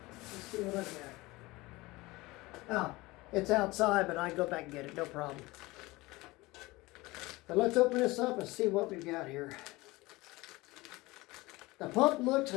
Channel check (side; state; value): right; quieter; 21.2 dB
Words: Let's see what I got. Oh, it's outside, but I can go back and get it, no problem. But let's open this up and see what we've got here. The pump looks